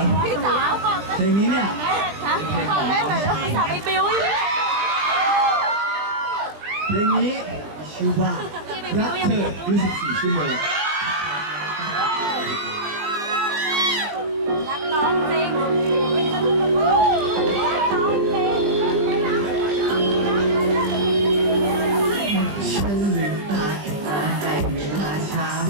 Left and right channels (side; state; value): left; late; 20 ms